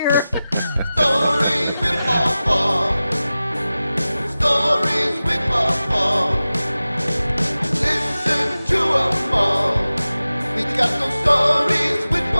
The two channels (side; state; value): both; inverted; correlation -0.95